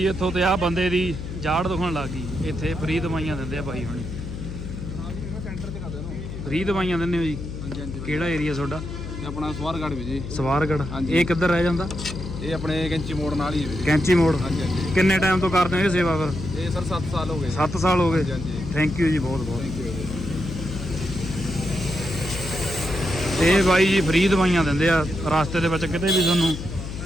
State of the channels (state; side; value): noise; left; hum, 8 dB below the sound